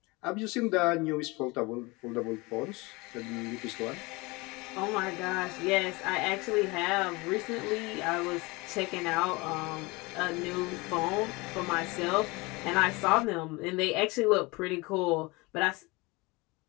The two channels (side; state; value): right; quieter; 24.6 dB